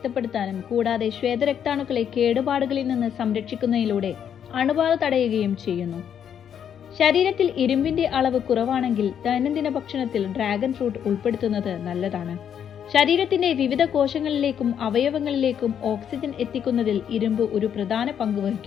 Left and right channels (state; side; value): quieter; right; 8.7 dB